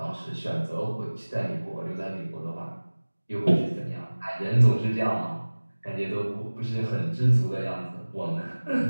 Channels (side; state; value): both; inverted; correlation -1.00